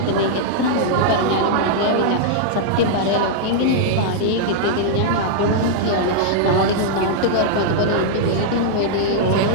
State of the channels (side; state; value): both; different; correlation -0.01